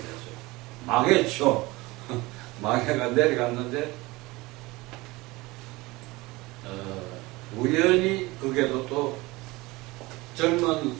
망했죠. 망해가 내려갔는데 우연히 그게도 또 젊은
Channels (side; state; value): left; quieter; 21.7 dB